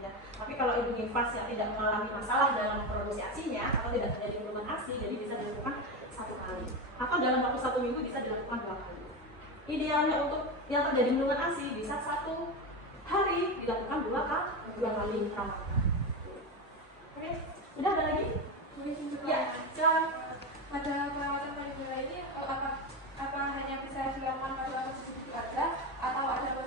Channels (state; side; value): normal; both; correlation 0.17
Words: Ya. Tapi kalau ibu nifas yang tidak mengalami masalah dalam produksi ASI-nya atau tidak terjadi bendungan ASI, jadi bisa dilakukan 1 kali. Atau dalam waktu 1 minggu bisa dilakukan 2 kali. Idealnya untuk yang terjadi bendungan ASI bisa 1 hari dilakukan 2 kali perawatan. Oke, udah ada lagi? Ya, silakan. Pada perawatan payudara ini apa hanya bisa dilakukan pada posisi itu saja atau ada